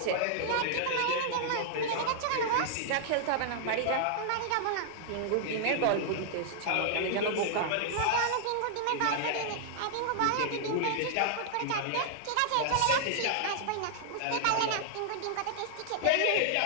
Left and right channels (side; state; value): both; different; correlation -0.01